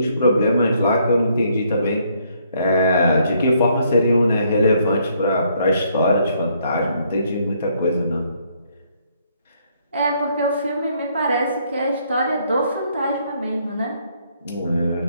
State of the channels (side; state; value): both; inverted; correlation -0.69